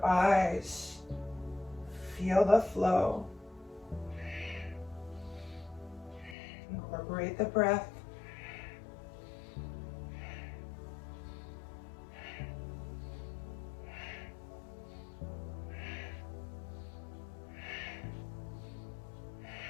eyes. Feel the flow. Incorporate the breath.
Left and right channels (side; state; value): right; drops out; at 6.4 s